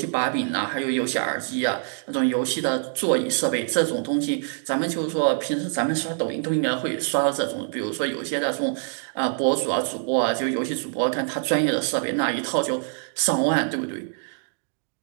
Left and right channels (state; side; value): silent; left; digital silence